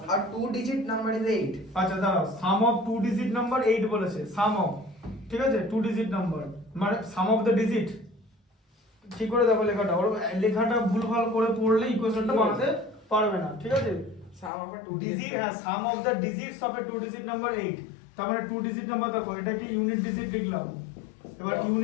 a two digit number is 8। আচ্ছা দাঁড়াও, সাম অফ টু ডিজিট নাম্বার 8 বলেছে। সাম অফ, ঠিক আছে, টু ডিজিট নাম্বার মানে সাম অফ দ্য ডিজিট। ঠিক করে দেখো লেখাটা, ওর লেখাটা ভুলভাল করে পড়লে ইকুয়েশনটা বানাতে পারবে না, ঠিক আছে। sum of a two digit, হ্যাঁ sum of the digits of a two digit number 8। তার মানে টু ডিজিট নাম্বার দেখো, এটাকে ইউনিট ডিজিট লিখলাম। এবার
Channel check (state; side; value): drops out; right; at 14.5 s